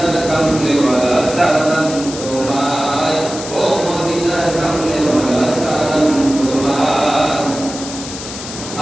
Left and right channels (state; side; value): noise; left; hiss, 10 dB below the sound